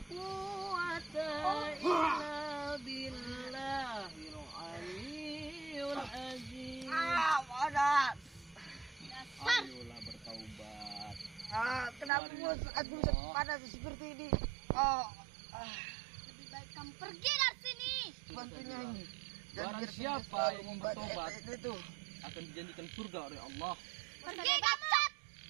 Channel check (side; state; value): left; drops out; at 12.1 s